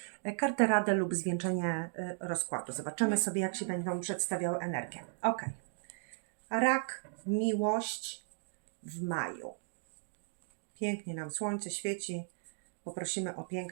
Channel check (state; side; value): silent; left; digital silence